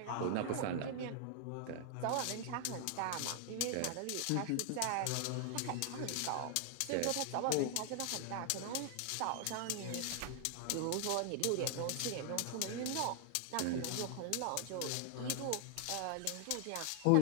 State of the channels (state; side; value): different; both; correlation 0.00